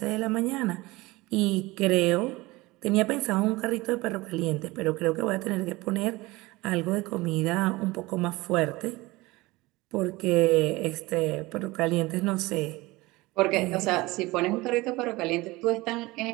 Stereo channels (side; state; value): left; quieter; 21.1 dB